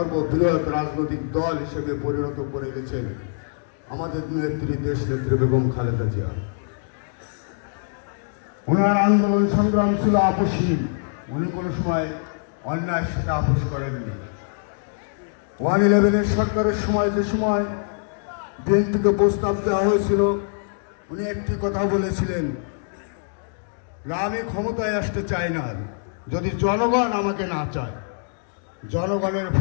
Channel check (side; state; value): right; silent; digital silence